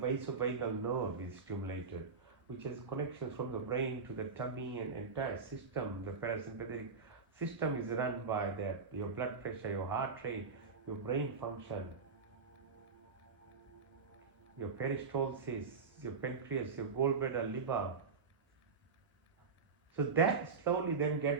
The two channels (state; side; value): quieter; left; 5.0 dB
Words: nerve is stimulated, which has connections from the brain to the tummy and entire system. The parasympathetic system is run by that, your blood pressure, your heart rate, your brain function, your peristalsis, your pancreas, your gallbladder, liver. So that slowly then